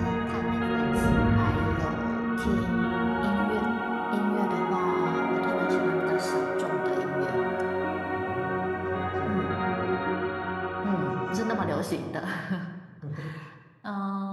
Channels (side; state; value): both; identical; correlation 1.00